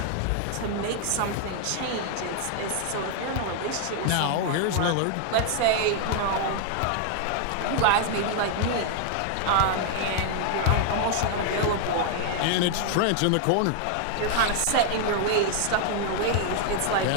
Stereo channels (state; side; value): different; both; correlation 0.00